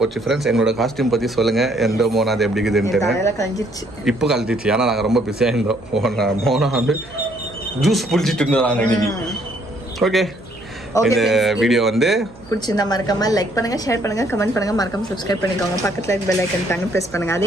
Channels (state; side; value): noise; right; hum, 22 dB below the sound